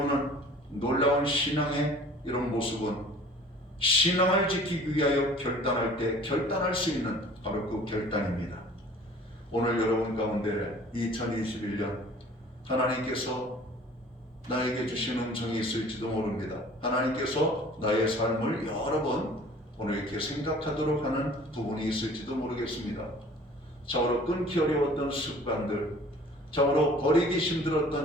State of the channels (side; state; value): both; normal; correlation 0.48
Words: 놀라운 신앙의 이런 모습은 신앙을 지키기 위하여 결단할 때 결단할 수 있는 바로 그 결단입니다. 오늘 여러분 가운데 2021년 하나님께서 나에게 주신 음성이 있을지도 모릅니다. 하나님께서 나의 삶을 여러 번 오늘 이렇게 생각하도록 하는 부분이 있을지도 모르겠습니다. 자고로 끊기 어려웠던 습관들, 자고로 버리기